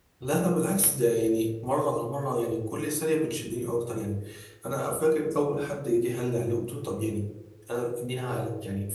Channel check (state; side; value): identical; both; correlation 1.00